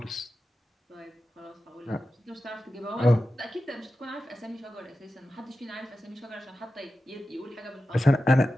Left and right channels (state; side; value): normal; both; correlation 0.93